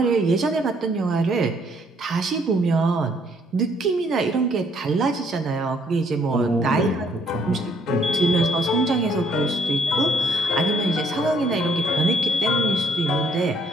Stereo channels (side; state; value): both; normal; correlation 0.66